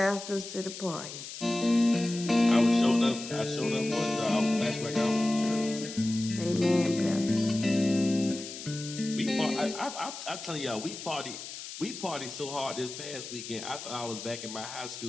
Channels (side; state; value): left; noise; hiss, 10 dB below the sound